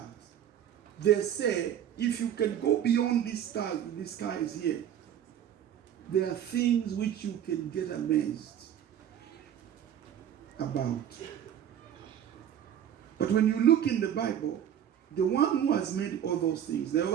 They say if you can go beyond these stars, the sky is here, there are things which you can get amazed about. But when you look in the Bible, the one who has made all those things, the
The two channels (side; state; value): left; quieter; 9.9 dB